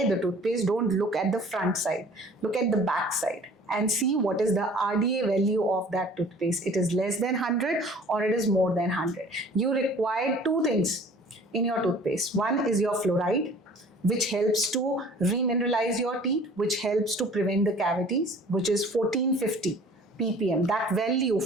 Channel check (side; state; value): both; normal; correlation 0.49